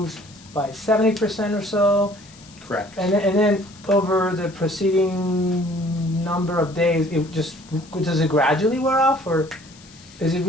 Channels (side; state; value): left; noise; hiss, 23 dB below the sound